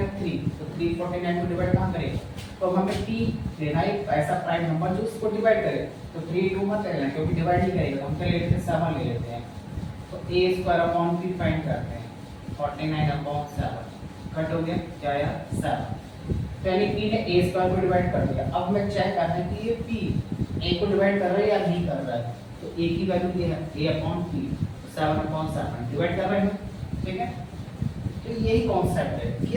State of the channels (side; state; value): both; identical; correlation 1.00